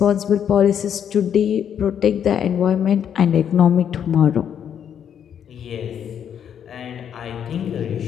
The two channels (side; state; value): right; quieter; 8.7 dB